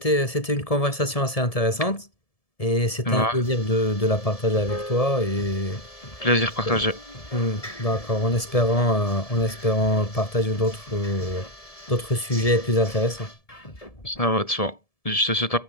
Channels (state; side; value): late; right; 1.7 ms